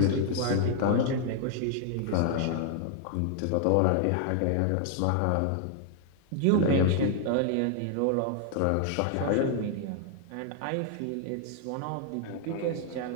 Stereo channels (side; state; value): both; different; correlation 0.00